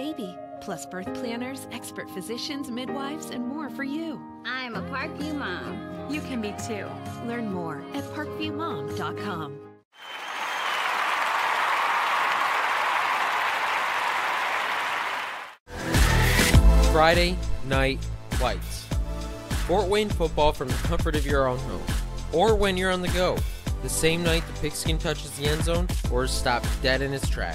plus birth planners, expert physicians, midwives, and more for you. I'm a Parkview mom. You can be too. Learn more at parkviewmom.com. Friday Night Lights. Fort Wayne football from the comfort of your own home, or when you're on the go. The same night the pigskin touches the end zone or is stopped dead in its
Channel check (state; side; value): identical; both; correlation 1.00